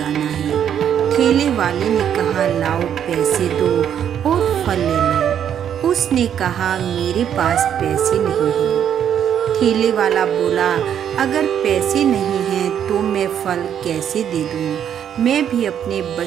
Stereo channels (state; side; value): quieter; left; 9.2 dB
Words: है। ठेले वाले ने कहा, लाओ पैसे दो और फल ले लो। उसने कहा, मेरे पास पैसे नहीं हैं। ठेले वाला बोला, अगर पैसे नहीं हैं तो मैं फल कैसे दे दूं? मैं भी अपने